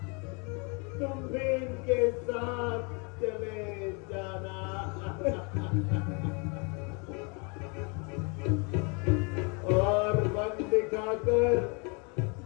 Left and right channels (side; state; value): right; quieter; 32.7 dB